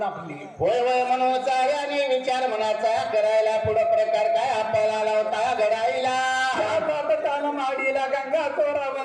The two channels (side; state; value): both; identical; correlation 1.00